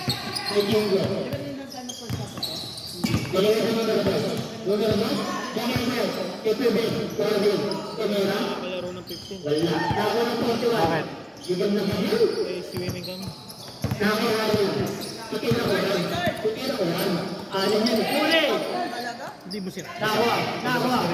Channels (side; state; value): both; identical; correlation 1.00